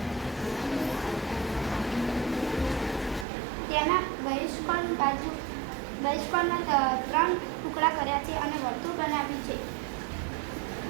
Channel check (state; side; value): drops out; left; at 3.2 s